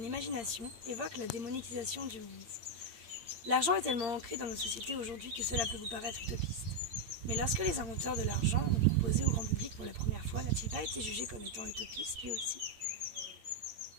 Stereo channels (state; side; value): late; left; 8.7 ms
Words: imagination évoque la démonétisation du monde. L'argent est tellement ancré dans nos sociétés aujourd'hui que cela peut vous paraître utopiste. Mais lorsque les inventeurs de l'argent l'ont proposé au grand public pour la première fois, n'a-t-il pas été jugé comme étant utopiste lui aussi?